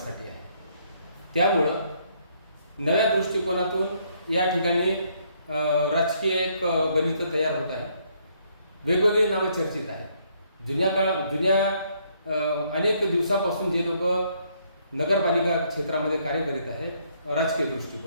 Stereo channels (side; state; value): both; inverted; correlation -0.69